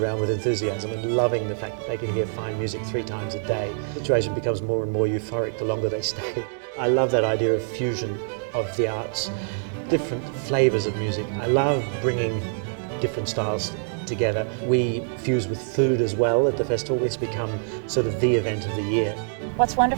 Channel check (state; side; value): silent; left; 62 dB below the other